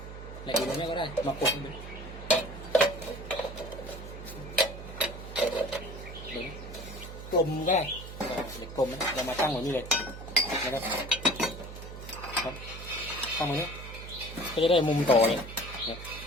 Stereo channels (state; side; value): noise; right; hum, 11 dB below the sound